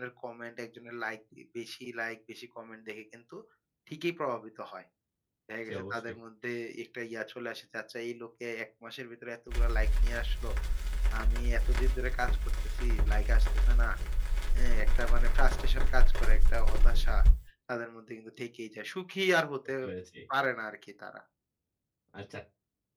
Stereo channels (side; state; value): both; identical; correlation 1.00